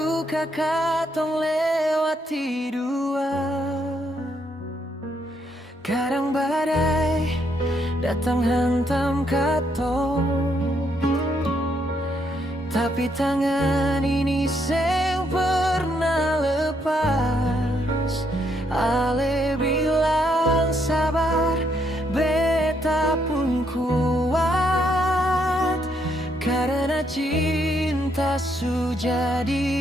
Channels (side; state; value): both; normal; correlation 0.74